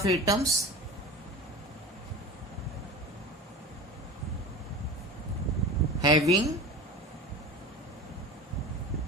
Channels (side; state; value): both; normal; correlation 0.33